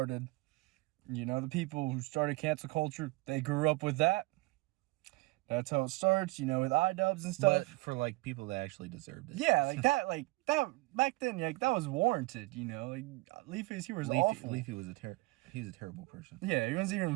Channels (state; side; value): quieter; left; 23.2 dB